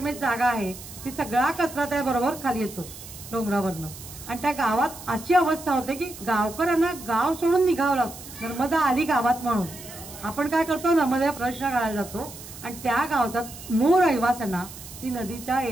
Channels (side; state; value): right; noise; hiss, 15 dB below the sound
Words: जागा आहे ती सगळा कचरा त्याबरोबर खाली येतो डोंगरावरनं. आणि त्या गावात अशी अवस्था होते की गावकऱ्यांना गाव सोडून निघावं लागतं, नर्मदा आली गावात म्हणून. आपण काय करतो, नर्मदा प्रदक्षिणा घालायला जातो आणि त्या गावाचा मूळ रहिवाशांना ती नदीच्या